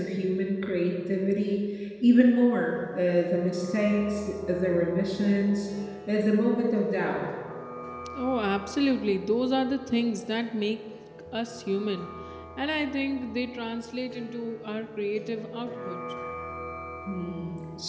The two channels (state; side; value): identical; both; correlation 1.00